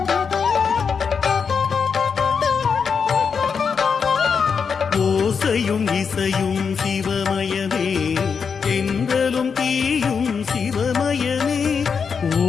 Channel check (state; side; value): quieter; right; 6.1 dB